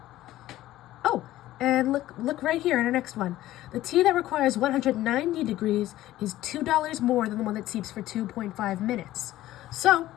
Oh, and look right here in our next one. The tea that requires 190 degrees is $2 more than the one that steeps for 2.5 minutes. So,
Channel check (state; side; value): quieter; right; 15.0 dB